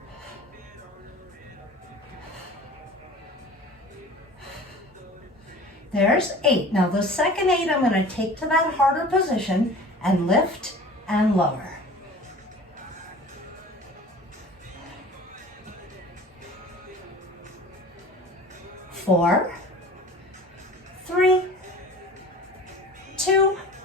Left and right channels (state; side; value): normal; both; correlation 0.41